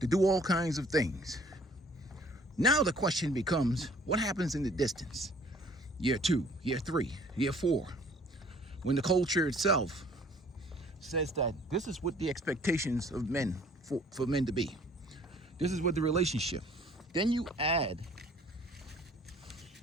do all kinds of things. Now the question becomes, what happens in the distance? Year 2, year 3, year 4, when the culture itself says that this is what the expectations of men, for men to be. This is what the relationship. Then you add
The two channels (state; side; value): normal; both; correlation 0.55